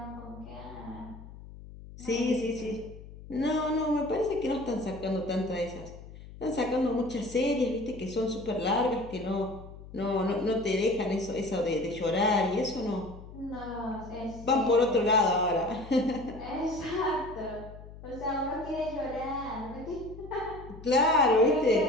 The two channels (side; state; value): left; noise; hum, 16 dB below the sound